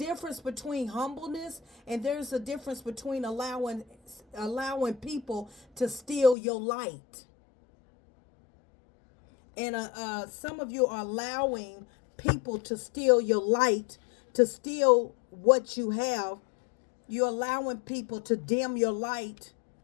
between humbleness and there's a difference between allowing people to steal your light. And some of you are allowing people to steal your light, to steal what you have. You're allowing people to dim your light,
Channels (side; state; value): right; drops out; at 6.4 s